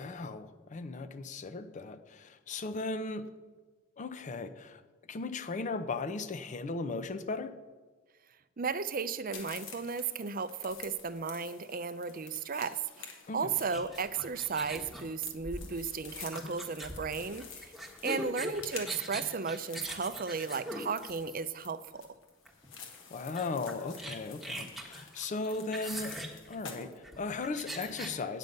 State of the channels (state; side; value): normal; both; correlation 0.07